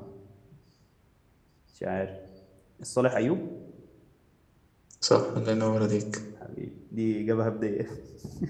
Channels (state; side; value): identical; both; correlation 1.00